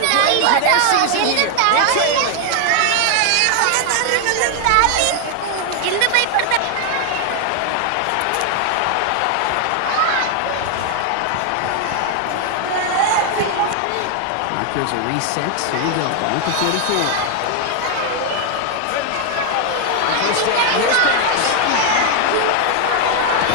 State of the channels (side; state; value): both; different; correlation 0.00